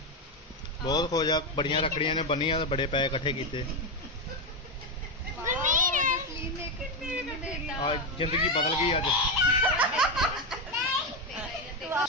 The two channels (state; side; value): normal; both; correlation 0.09